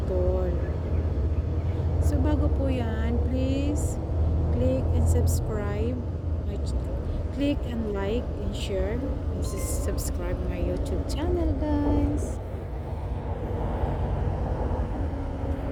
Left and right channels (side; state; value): both; identical; correlation 1.00